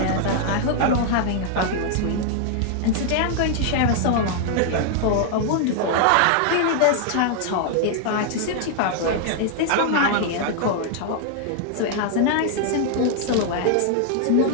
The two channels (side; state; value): both; different; correlation 0.00